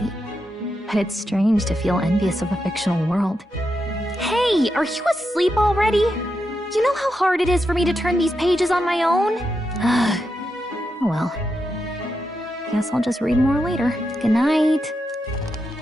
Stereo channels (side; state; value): both; normal; correlation 0.85